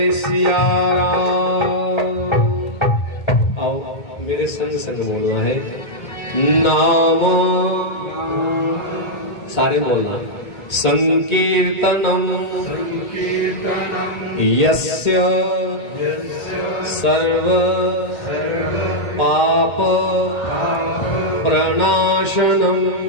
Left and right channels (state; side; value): late; right; 2.1 ms